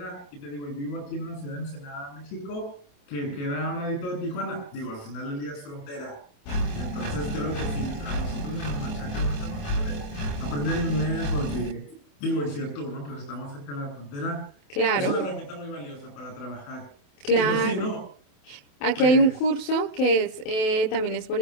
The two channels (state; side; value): late; right; 28 ms